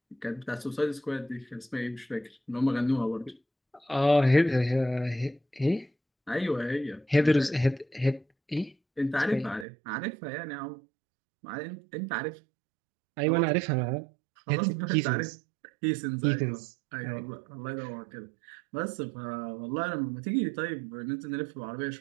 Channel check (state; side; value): drops out; left; at 9.7 s